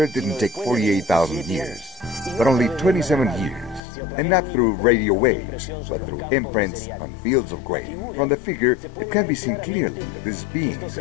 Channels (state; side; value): drops out; right; at 3.8 s